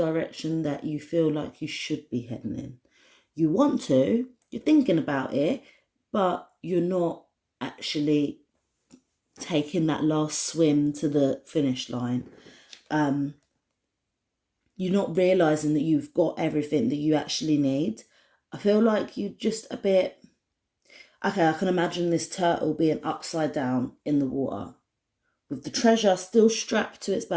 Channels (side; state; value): both; identical; correlation 1.00